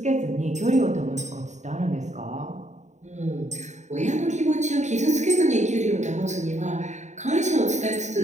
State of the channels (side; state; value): left; late; 0.34 ms